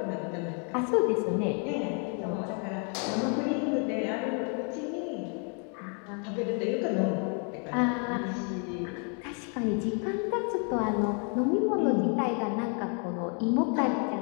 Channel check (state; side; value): quieter; right; 39.9 dB